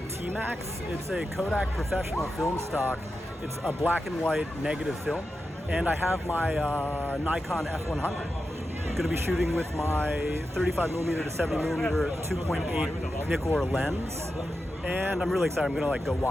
TMAX. It's a Kodak Professional film stock. It's a black and white negative film, and I have my Nikon F100. I'm going to be shooting with my 35mm to 70mm 2.8 Nikkor lens, and I'm really excited. I'm going to go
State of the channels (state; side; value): normal; both; correlation 0.90